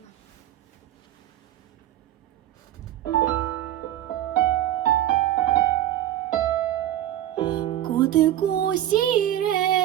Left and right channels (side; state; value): left; quieter; 12.7 dB